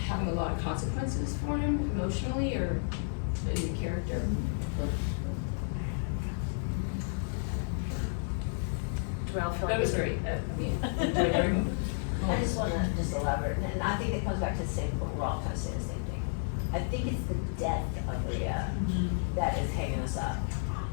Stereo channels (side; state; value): right; silent; 57 dB below the other